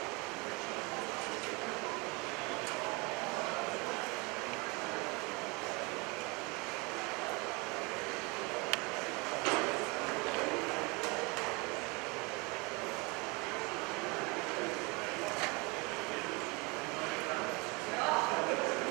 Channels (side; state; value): left; quieter; 27.9 dB